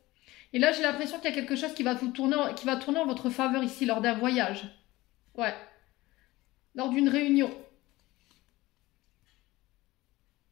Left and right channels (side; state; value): right; quieter; 19.0 dB